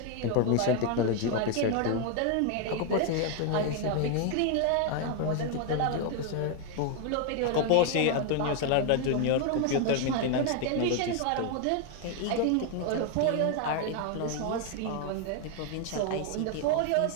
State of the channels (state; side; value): different; both; correlation 0.01